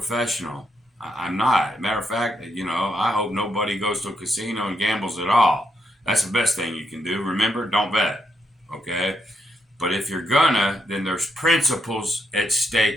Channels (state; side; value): normal; both; correlation 0.79